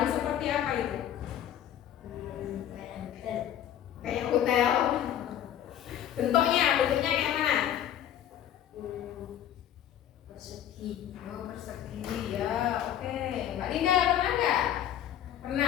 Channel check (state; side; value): quieter; right; 10.8 dB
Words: seperti apa itu? Kayak hotel. Bentuknya kayak mana? Persegi. Oh persegi ya, oke. Mbak Linda pernah nggak?